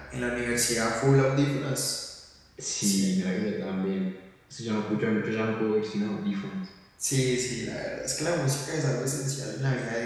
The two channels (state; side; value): identical; both; correlation 1.00